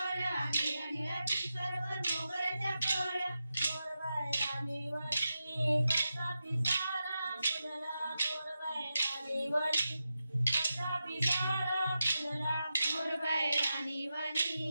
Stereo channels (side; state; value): both; inverted; correlation -0.90